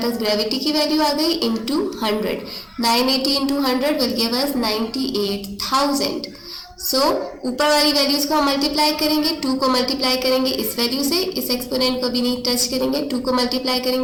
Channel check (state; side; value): identical; both; correlation 1.00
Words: पास ग्रेविटी की वैल्यू आ गई, into 100. 980 into 100 will give us 98,000. सो ऊपर वाली वैल्यूज को हम मल्टीप्लाई करेंगे, 2 को मल्टीप्लाई करेंगे इस वैल्यू से, इस एक्सपोनेंट को भी नहीं टच करेंगे, 2 को मल्टीप्लाई